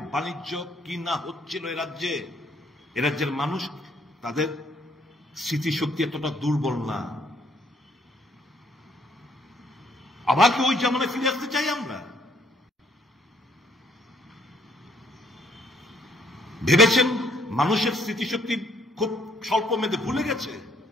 বাণিজ্য কি না হচ্ছিল এ রাজ্যের মানুষ, তাদের স্মৃতিশক্তি এতটা দুর্বল না। আবার কি ওই জামানায় ফিরে আসতে চাই আমরা? ভেবেছেন মানুষের স্মৃতিশক্তি খুব স্বল্প মেয়াদে ভুলে গেছে?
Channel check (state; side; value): normal; both; correlation 0.66